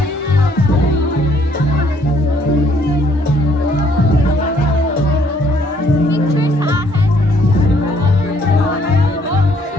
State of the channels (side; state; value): both; normal; correlation 0.65